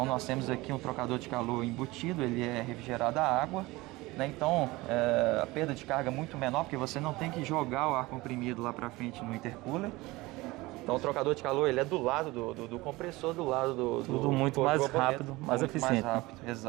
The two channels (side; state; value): left; quieter; 20.9 dB